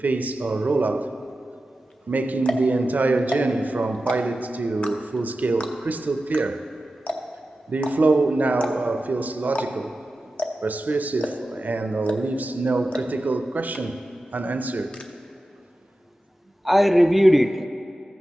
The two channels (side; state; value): both; normal; correlation 0.93